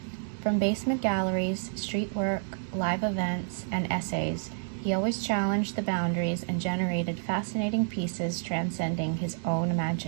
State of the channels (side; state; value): left; silent; digital silence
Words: From basement galleries, street work, live events, and essays, he always challenged the boundaries and generated fascinating pieces transcending his own